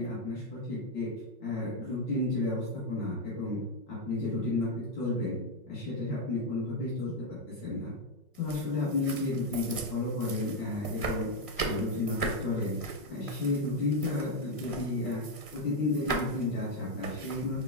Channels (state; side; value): late; right; 5.4 ms